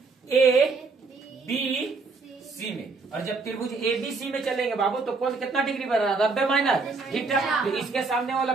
A B C में, और जब त्रिभुज ABC में चलेंगे बाबू तो कौन कितना डिग्री बन रहा है 90 माइनस थीटा। तो इसके सामने वाला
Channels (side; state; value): left; quieter; 4.2 dB